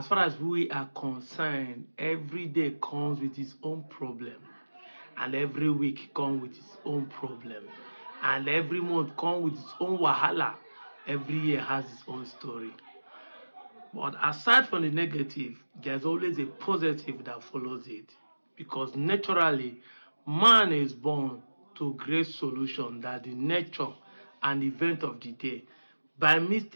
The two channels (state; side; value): inverted; both; correlation -1.00